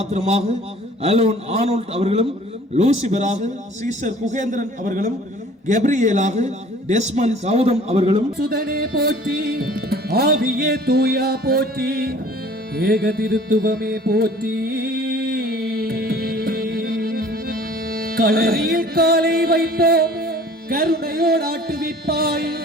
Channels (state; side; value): normal; both; correlation 0.50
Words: அலோன் ஆனோல்ட் அவர்களும், லூசிபராக சீசர் குகேந்திரன் அவர்களும், கெப்ரியேலாக டெஸ்மன் கௌதம் அவர்களும், சுதனே போற்றி, ஆவியே தூயா போற்றி, ஏக திருத்துவமே போற்றி. களரியில் காலை வைப்போம், கருணையோடு ஆட்டுவிப்பாய்,